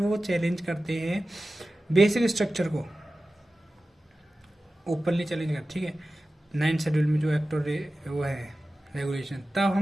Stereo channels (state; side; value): normal; both; correlation 0.95